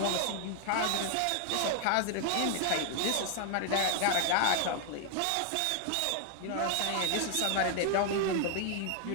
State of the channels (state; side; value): different; both; correlation 0.00